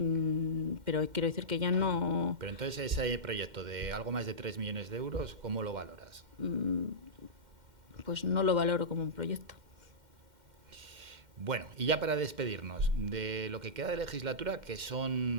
pero quiero decir que ya no... Pero entonces ese proyecto de algo más de 3 millones de euros, ¿cómo lo valoras? Pues no lo valoro como un proyecto. Bueno, y ya para despedirnos de lo que queda de legislatura, que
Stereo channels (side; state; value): left; late; 2.1 ms